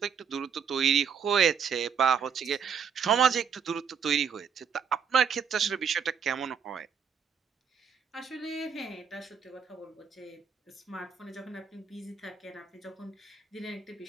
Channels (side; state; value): left; quieter; 6.8 dB